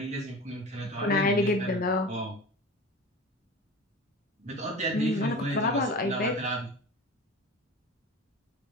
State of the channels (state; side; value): normal; both; correlation 0.33